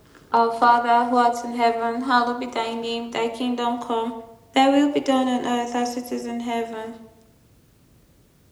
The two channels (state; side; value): identical; both; correlation 1.00